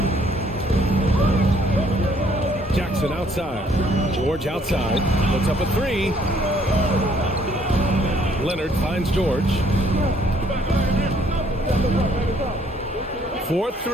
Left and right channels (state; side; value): normal; both; correlation 0.64